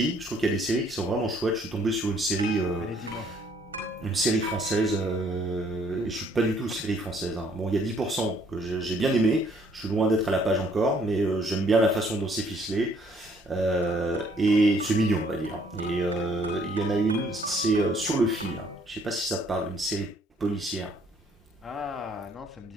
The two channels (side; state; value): both; normal; correlation 0.63